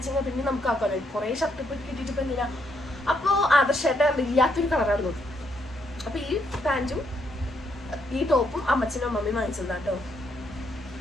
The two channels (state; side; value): normal; both; correlation 0.75